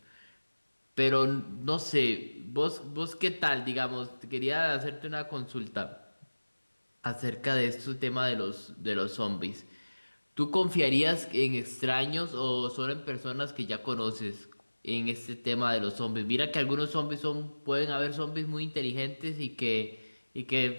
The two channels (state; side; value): inverted; both; correlation -1.00